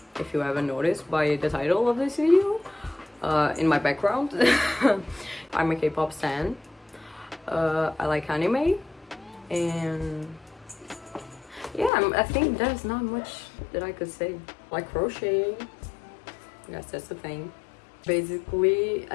if you haven't noticed by the title of this video, in my background. I'm a K-pop stan. I like anime, and yeah, I think there's not much that I could say. I like crocheting. I guess that's the thing. Basically, I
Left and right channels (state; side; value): drops out; right; at 11.9 s